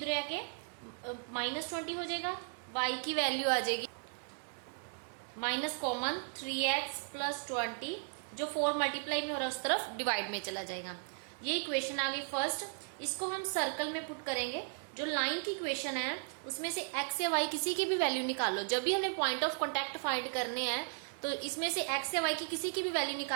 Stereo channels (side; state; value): left; silent; 54 dB below the other